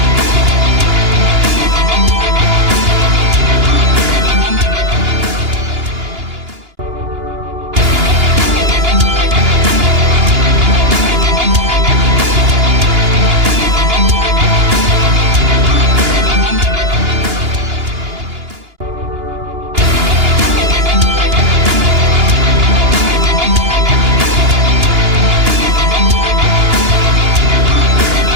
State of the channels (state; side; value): late; left; 2.9 ms